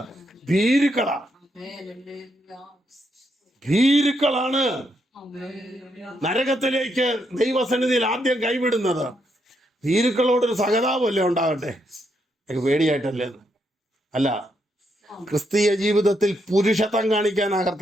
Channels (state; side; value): normal; both; correlation 0.78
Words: ഭീരുക്കളാണ്. ഭീരുക്കളാണ് നരകത്തിലേക്ക് ദൈവസന്നിധിയിൽ ആദ്യം കൈവിടുന്നത്. ഭീരുക്കളോടൊരു സഹതാപമല്ലേ ഉണ്ടാകട്ടെ, പേടിയായിട്ടല്ലേ? അല്ല, ക്രിസ്തീയ ജീവിതത്തിൽ പുരുഷത്വം കാണിക്കാനാ